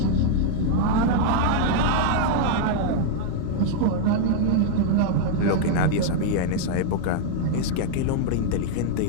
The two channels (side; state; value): both; different; correlation -0.01